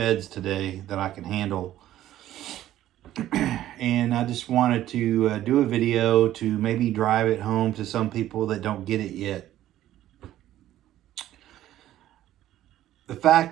today that I can handle. And I just wanted to do a video to maybe drive it home to some people that don't get it yet. The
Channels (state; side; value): quieter; left; 13.2 dB